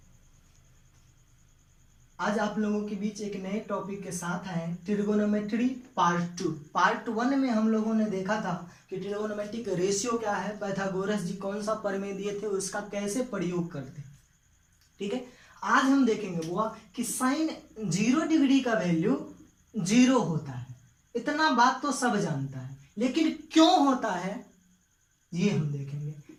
आज आप लोगों के बीच एक नए टॉपिक के साथ आए ट्रिगोनोमेट्री पार्ट 2। पार्ट 1 में हम लोगों ने देखा था कि ट्रिगोनोमेट्रिक रेशियो क्या है, पाइथागोरस जी कौन सा प्रमेय दिए थे, उसका कैसे प्रयोग करते। ठीक है, आज हम देखेंगे वो कि साइन 0 डिग्री का वैल्यू 0 होता है। इतना बात तो सब जानता है, लेकिन क्यों होता है ये हम देखेंगे।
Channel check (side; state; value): both; identical; correlation 1.00